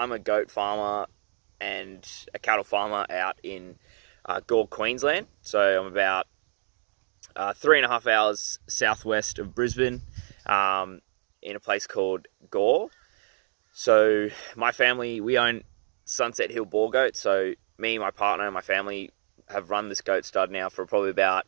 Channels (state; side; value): silent; left; digital silence